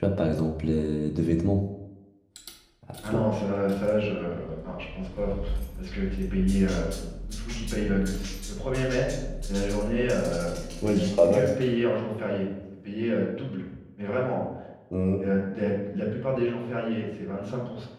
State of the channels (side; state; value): both; identical; correlation 1.00